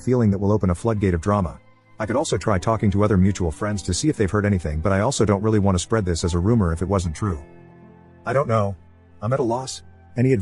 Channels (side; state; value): both; identical; correlation 1.00